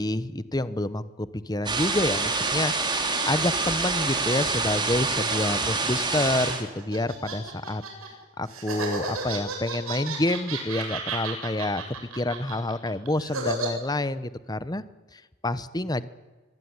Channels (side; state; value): both; normal; correlation 0.40